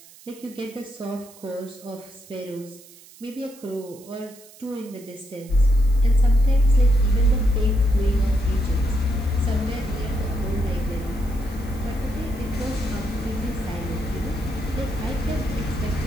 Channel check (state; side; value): noise; right; hiss, 22 dB below the sound